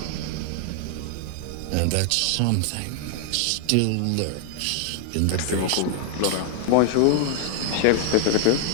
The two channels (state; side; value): different; both; correlation -0.01